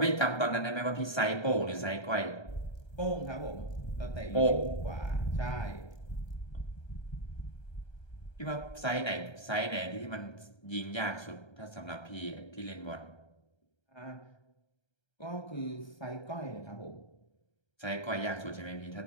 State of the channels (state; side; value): late; right; 1.3 ms